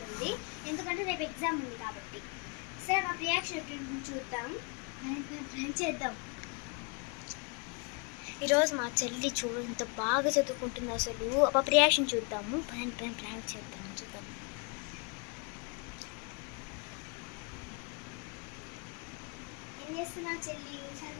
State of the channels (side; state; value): right; quieter; 33.4 dB